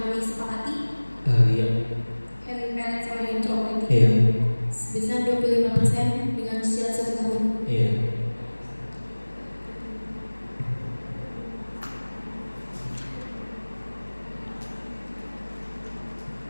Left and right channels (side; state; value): both; inverted; correlation -1.00